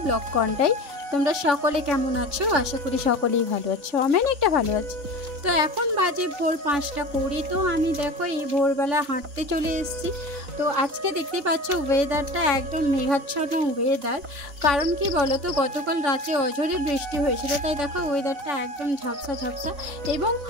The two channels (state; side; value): late; left; 3.5 ms